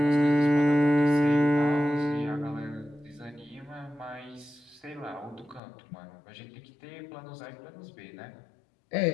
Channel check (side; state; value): right; drops out; at 5.6 s